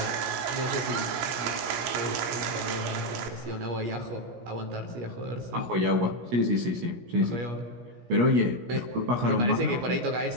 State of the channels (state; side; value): late; left; 17 ms